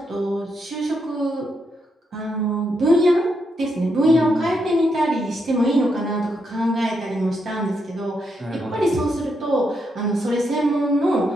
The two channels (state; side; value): normal; both; correlation 0.80